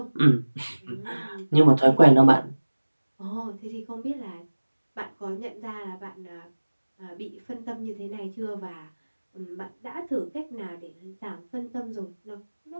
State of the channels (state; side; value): inverted; both; correlation -1.00